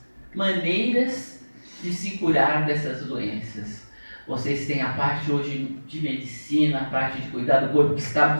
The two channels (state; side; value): inverted; both; correlation -1.00